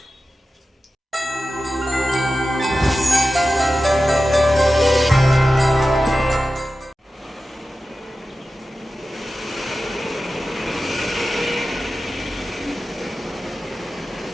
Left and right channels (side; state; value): both; normal; correlation 0.93